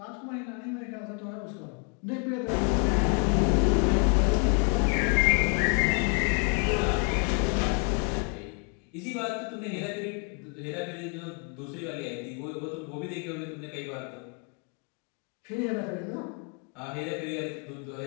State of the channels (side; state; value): right; quieter; 38.4 dB